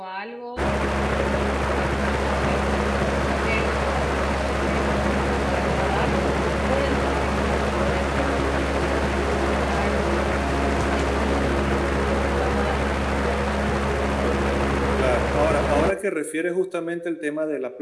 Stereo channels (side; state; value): both; identical; correlation 1.00